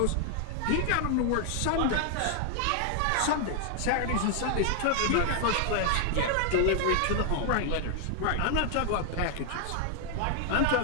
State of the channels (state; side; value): different; both; correlation 0.00